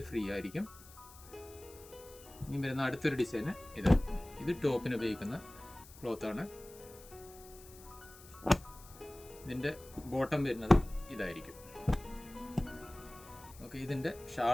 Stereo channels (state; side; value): noise; left; hiss, 20 dB below the sound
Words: ഫ്രീ ആയിരിക്കും. ഇനി വരുന്ന അടുത്തൊരു ഡിസൈന് ഇത് ടോപ്പിന് ഉപയോഗിക്കുന്ന ക്ലോത്താണ്. ഇതിൻ്റെ ബോട്ടം വരുന്നത് ഇതായിരിക്കും. ഓക്കെ, ഇതിൻ്റെ